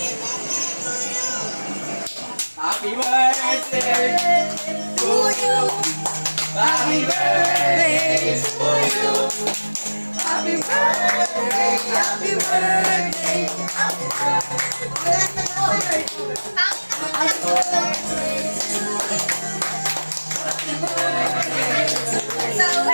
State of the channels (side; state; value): both; inverted; correlation -1.00